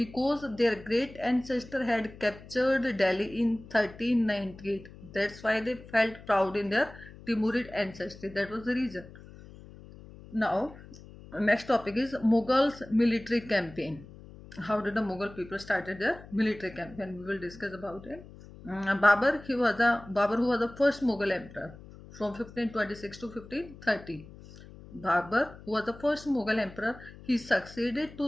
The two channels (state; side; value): noise; left; hum, 18 dB below the sound